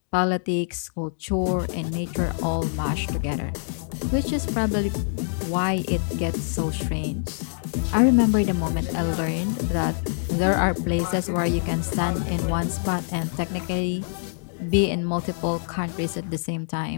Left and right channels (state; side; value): silent; right; 62 dB below the other